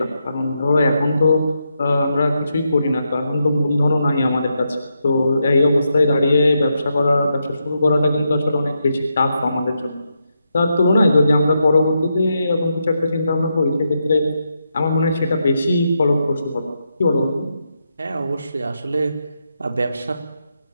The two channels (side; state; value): both; inverted; correlation -0.83